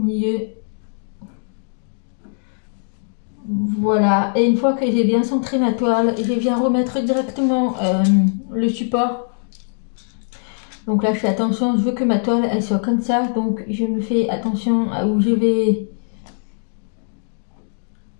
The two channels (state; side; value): silent; right; digital silence